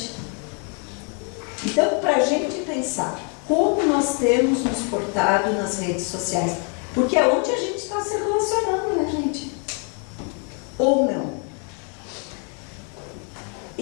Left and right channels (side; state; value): right; quieter; 38.8 dB